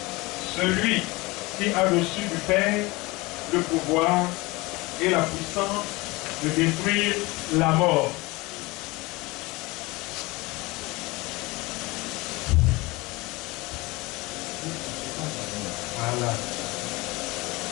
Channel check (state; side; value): quieter; right; 23.0 dB